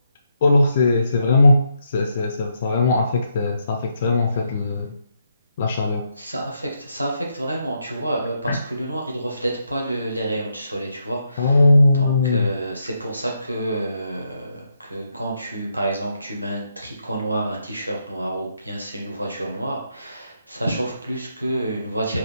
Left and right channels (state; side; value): inverted; both; correlation -0.79